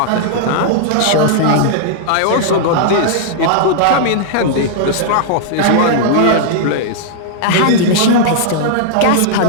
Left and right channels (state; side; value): different; both; correlation -0.01